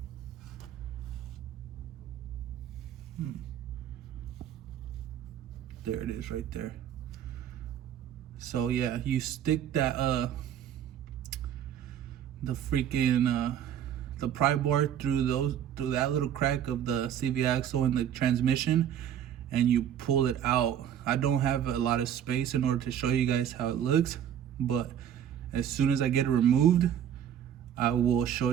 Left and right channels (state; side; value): quieter; left; 9.8 dB